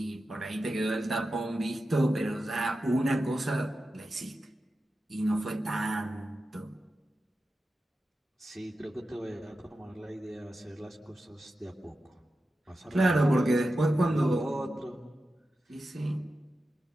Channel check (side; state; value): both; normal; correlation 0.91